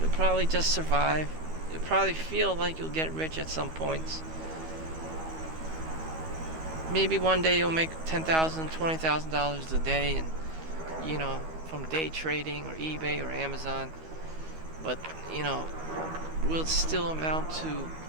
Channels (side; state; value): left; late; 12 ms